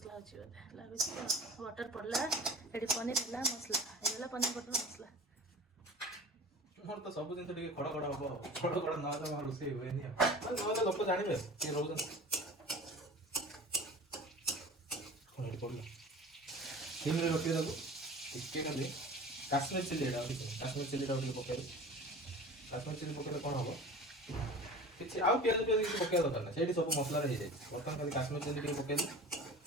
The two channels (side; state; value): both; normal; correlation 0.38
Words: ଅଛି ବୋଧେ ଲାଗୁଛି। ବଟର ପଡ଼ିଲା, ଏଠି ପନିର ହେଲା, ମସଲା ହେଇଗଲା, ପନିର ବଟର ମସଲା। ମୋର ତ ସବୁ ଜିନିଷ ଟିକେ ଖଡ଼ ଖଡ଼ ହବ, ଖଡ଼ ଖଡ଼ ନହେଲେ ମୋର ରୋଷେଇ ହୁଏନି। ନହେଲେ ଲୋକ ଜାଣିବେ କିଏ ରହୁଛନ୍ତି। ଏଠି ପଡ଼ିଲା, ସିମ୍ରେ ରଖିବେ ତାକୁ। ଟିକେ ଖାଲି କାଶ୍ମୀର ଚିଲି, ଏଇଟା କାଶ୍ମୀର ଚିଲିଟାକୁ ଟିକେ ପକେଇବେ। କାଶ୍ମୀର ଚିଲି ପକେଇଲେ କ'ଣ ହବ, କିଛି ଆଉ ପିଆଜ କିଛି ପକେଇବା ଦରକାର ନାହିଁ, ସେଇଠି ସବୁ ମସଲାରେ ହେଇଯାଇଛି। ବର୍ତ୍ତମାନ ଖାଲି କାଶ୍ମୀର ଚିଲି ଟିକେ ପକେଇଲେ